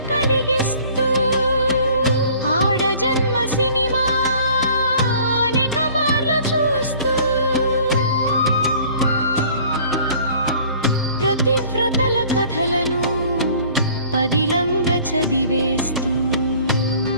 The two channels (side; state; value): both; inverted; correlation -0.52